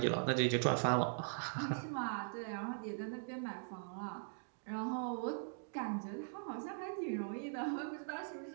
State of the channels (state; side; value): silent; left; digital silence